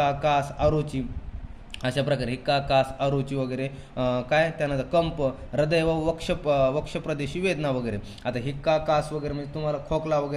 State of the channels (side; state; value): both; identical; correlation 1.00